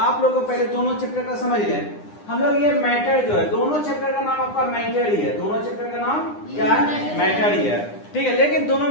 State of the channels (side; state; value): right; late; 9.8 ms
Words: लोग को पहले दोनों चैप्टर का समझ लें। हम लोग ये मैटर जो है, दोनों चैप्टर का नाम आपका मैटर ही है। दोनों चैप्टर का नाम क्या है? मैटर ही है। ठीक है, लेकिन दोनों